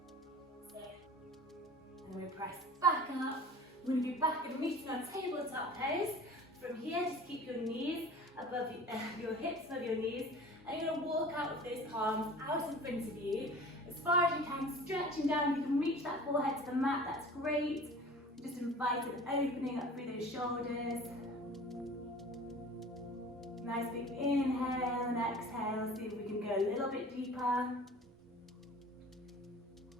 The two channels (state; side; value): normal; both; correlation 0.42